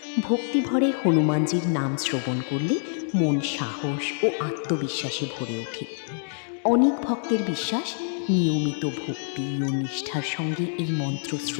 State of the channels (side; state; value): right; silent; digital silence